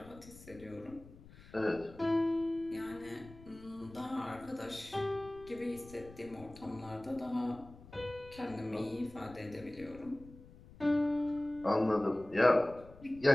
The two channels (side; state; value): left; noise; rumble, 19 dB below the sound